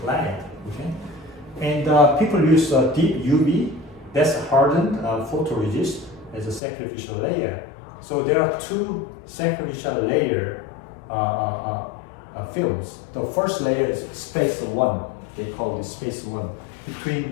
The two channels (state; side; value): drops out; right; at 6.6 s